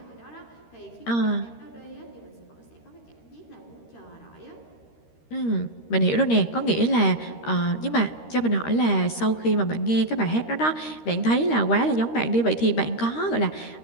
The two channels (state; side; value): late; right; 13 ms